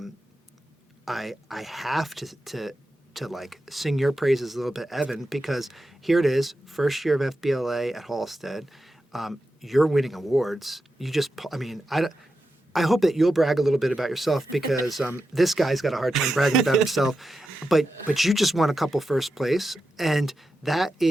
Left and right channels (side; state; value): both; normal; correlation 0.89